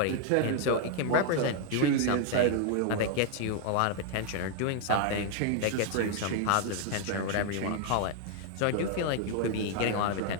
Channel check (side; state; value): both; different; correlation 0.00